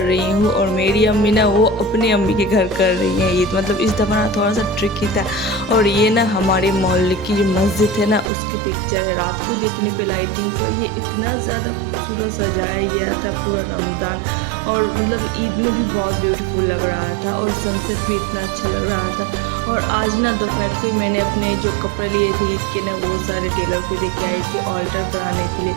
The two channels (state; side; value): drops out; left; at 8.3 s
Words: रही हूँ और मेरी अम्मी ना वो अपनी अम्मी के घर कर रही हैं ईद। मतलब इस दफ़ा ना थोड़ा सा ट्रिकी था। और ये ना हमारे मोहल्ले की जो मस्जिद है ना उसकी पिक्चर है। रात को देखने पे लाइटिंग पर ये इतना ज़्यादा खूबसूरत सजाया गया था पूरा रमज़ान, और मतलब ईद में भी बहुत ब्यूटीफुल लग रहा था और सनसेट भी इतना अच्छा लग रहा था। और आज ना दोपहर को ही मैंने अपने जो कपड़े लिए थे ईद के ना वो सारे टेलर को दे के आई थी ऑल्टर कराने के लिए।